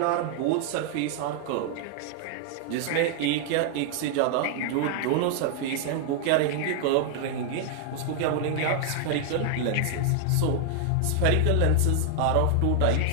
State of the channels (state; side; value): different; both; correlation 0.00